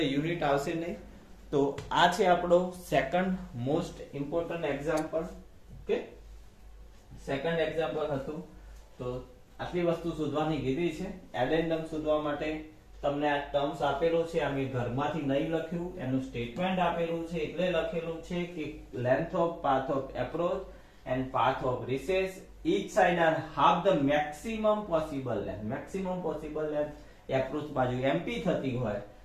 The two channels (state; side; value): identical; both; correlation 1.00